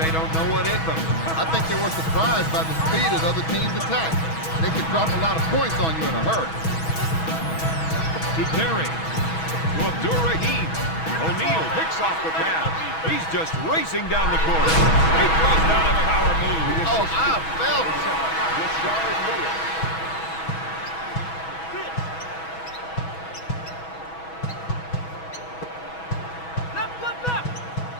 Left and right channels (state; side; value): late; right; 6.2 ms